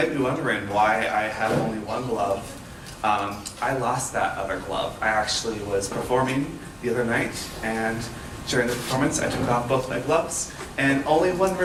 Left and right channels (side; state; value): both; identical; correlation 1.00